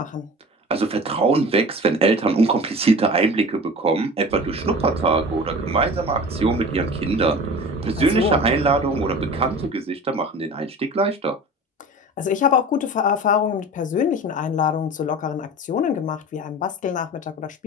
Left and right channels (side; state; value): both; normal; correlation 0.37